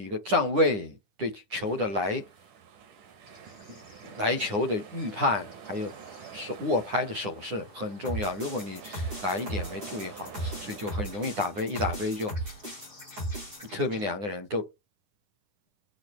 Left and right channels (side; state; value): left; late; 9.8 ms